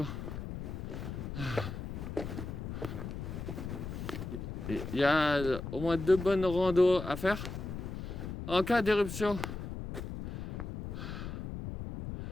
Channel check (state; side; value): noise; left; rumble, 6 dB below the sound